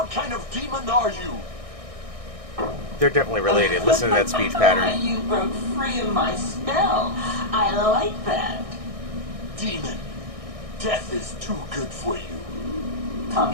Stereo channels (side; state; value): left; late; 1.6 ms